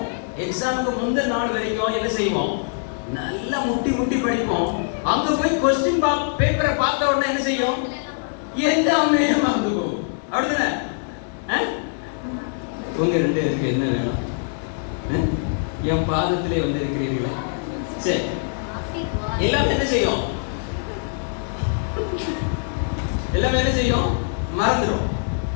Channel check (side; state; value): right; silent; digital silence